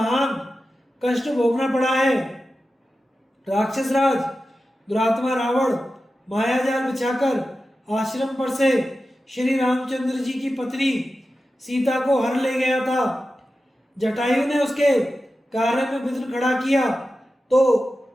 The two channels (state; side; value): normal; both; correlation 0.93